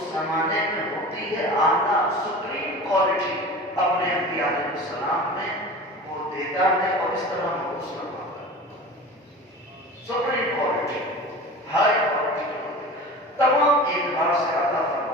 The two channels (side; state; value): both; normal; correlation 0.35